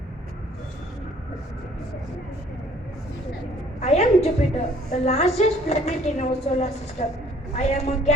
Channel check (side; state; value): both; normal; correlation 0.58